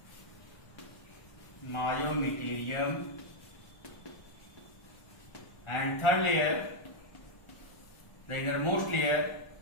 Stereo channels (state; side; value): late; right; 1.4 ms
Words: and third layer, the innermost layer,